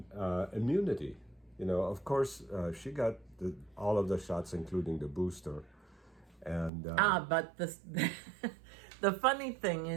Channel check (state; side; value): drops out; left; at 6.7 s